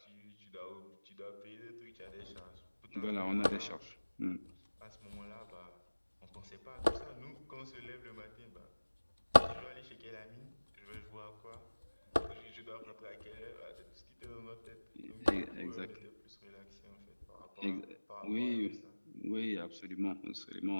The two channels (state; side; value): inverted; both; correlation -1.00